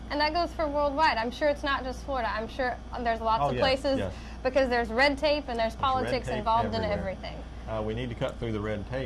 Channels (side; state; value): both; identical; correlation 1.00